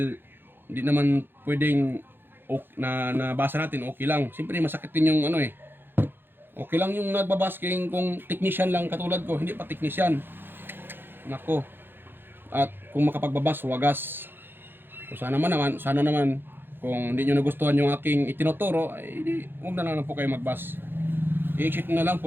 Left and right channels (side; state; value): left; late; 0.10 ms